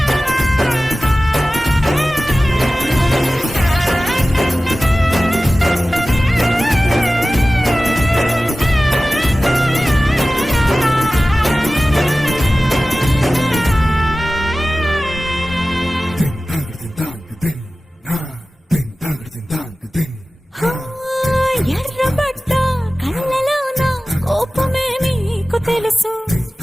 ఎర్రబడ్డ కళ్ళలోన కోపమే నీకు తెలుసు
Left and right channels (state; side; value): normal; both; correlation 0.96